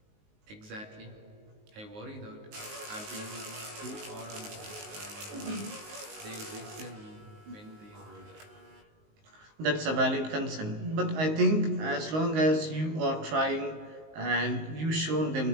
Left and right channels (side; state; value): left; late; 19 ms